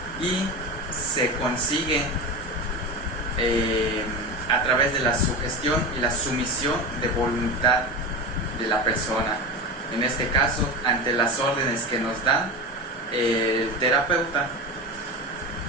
y se consigue a través de la sugestión y la sumisión de voluntad de la persona. En este caso, ante las órdenes que nos da el terapeuta.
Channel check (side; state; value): both; normal; correlation 0.24